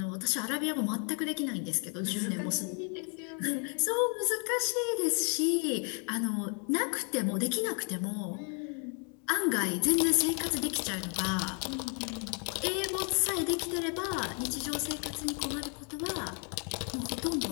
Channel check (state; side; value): quieter; right; 38.3 dB